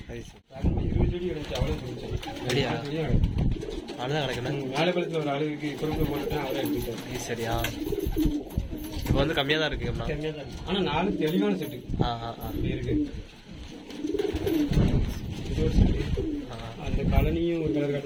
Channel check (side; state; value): both; identical; correlation 1.00